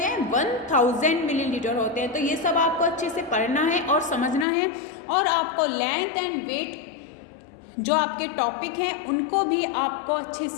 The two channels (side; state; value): right; drops out; at 4.5 s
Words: हैं? 1000 मिलीलीटर होते हैं। तो ये सब आपको अच्छे से पढ़ना है और समझना है, और आपको लेंथ एंड वेट जो आपके टॉपिक हैं उनको भी आपको अच्छे